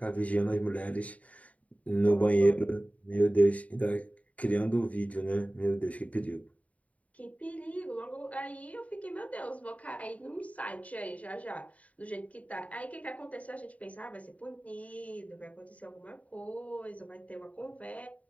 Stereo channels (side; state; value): right; late; 0.068 ms